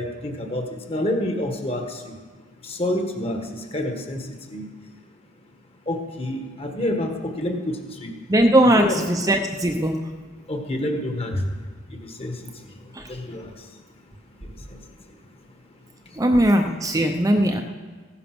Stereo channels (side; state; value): both; normal; correlation 0.70